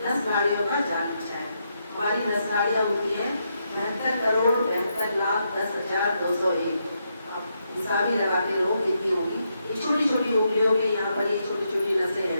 नस नाड़ियों का जाल बिछा है। हमारी नस नाड़ियाँ होती है 72,72,10,201। अब हिसाब ही लगाते रहो कितनी होगी। ये छोटी छोटी उंगलियों के यहाँ पर ये छोटी छोटी नसें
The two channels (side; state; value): both; inverted; correlation -0.81